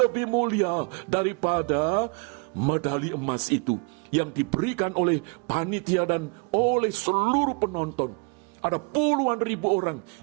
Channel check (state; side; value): quieter; left; 33.5 dB